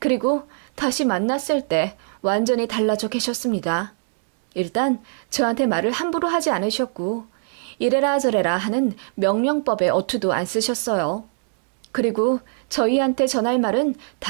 다시 만났을 때 완전히 달라져 계셨습니다. 일단 저한테 말을 함부로 하지 않으셨고 이래라 저래라 하는 명령법에 어투도 안 쓰셨어요. 그리고 저희한테 전할 말은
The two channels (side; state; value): left; silent; digital silence